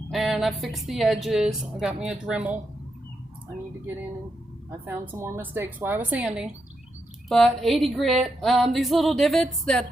and I fixed the edges. I got me a Dremel. I need to get in and I found some more mistakes while I was sanding. But 80 grit, these little divots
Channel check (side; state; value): both; normal; correlation 0.83